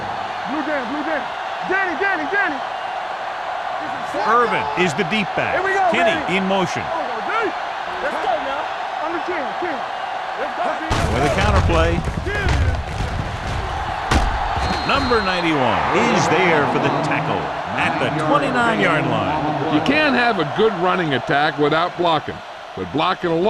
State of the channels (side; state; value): both; identical; correlation 1.00